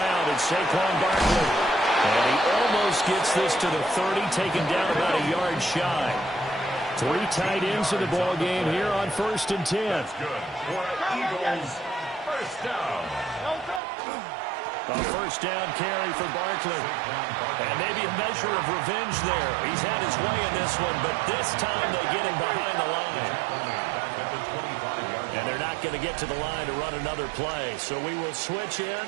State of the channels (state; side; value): drops out; left; at 13.8 s